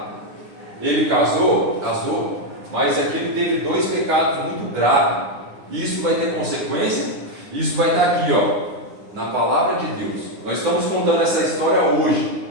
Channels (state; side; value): late; left; 9.8 ms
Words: Ele casou, mas aqui ele teve 2 pecados muito graves. Isso vai ter consequência. Isso vai estar aqui, na palavra de Deus. Nós estamos contando essa história hoje,